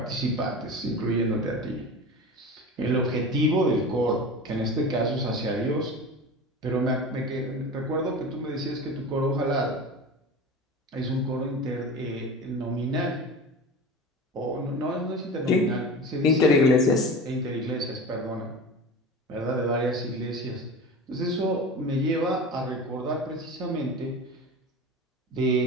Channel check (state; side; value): normal; both; correlation 0.32